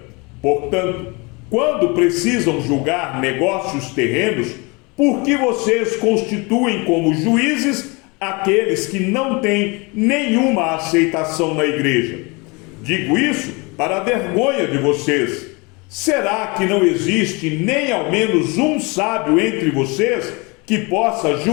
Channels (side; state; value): right; quieter; 28.0 dB